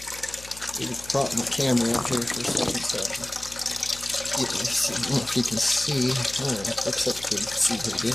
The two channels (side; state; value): left; noise; hum, 18 dB below the sound